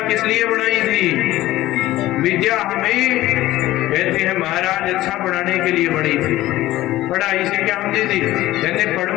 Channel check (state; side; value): quieter; right; 16.0 dB